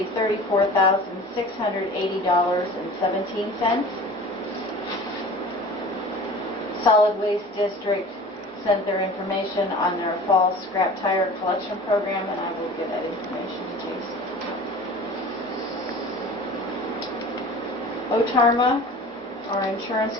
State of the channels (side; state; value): both; normal; correlation 0.41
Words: $34,680.17. Solid Waste District sent their information on their fall scrap tire collection program, and I will give that information to Jason. Otarma, our insurance